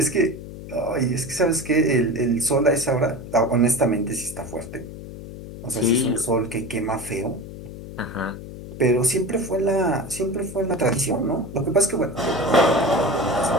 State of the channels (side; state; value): left; noise; hum, 12 dB below the sound